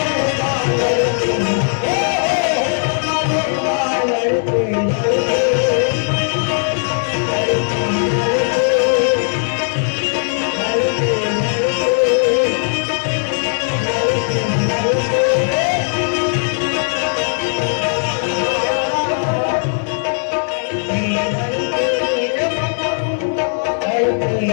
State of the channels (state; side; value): silent; right; digital silence